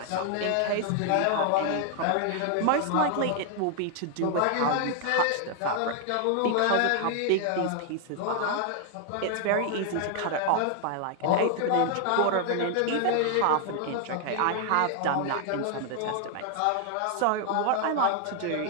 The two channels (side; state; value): both; different; correlation 0.00